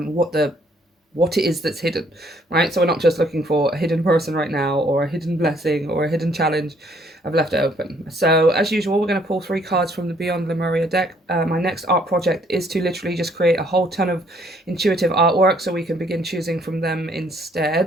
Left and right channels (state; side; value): normal; both; correlation 0.65